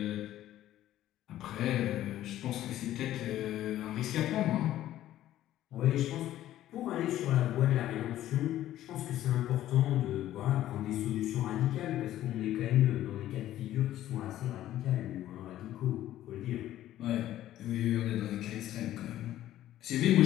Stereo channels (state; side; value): quieter; right; 13.3 dB